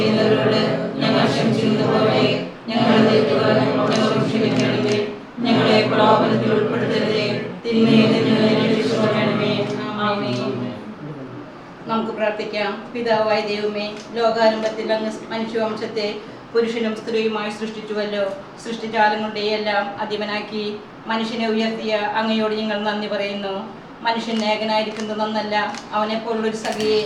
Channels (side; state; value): both; identical; correlation 1.00